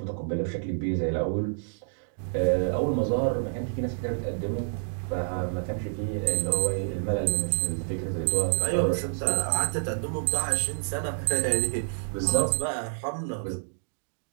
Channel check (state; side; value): silent; left; digital silence